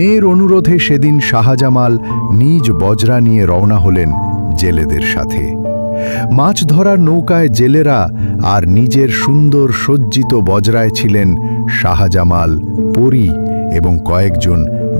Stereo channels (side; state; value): both; inverted; correlation -1.00